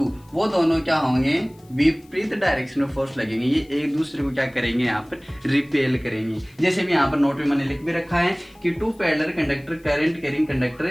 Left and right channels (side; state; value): left; noise; hiss, 30 dB below the sound